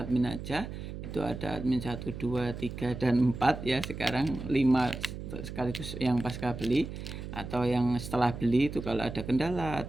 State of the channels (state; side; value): noise; right; hum, 9 dB below the sound